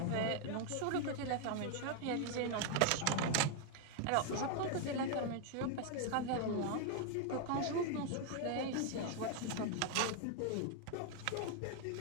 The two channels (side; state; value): both; different; correlation 0.00